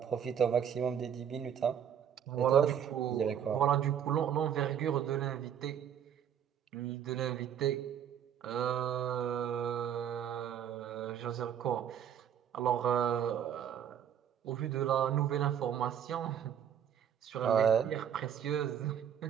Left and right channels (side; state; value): left; quieter; 9.0 dB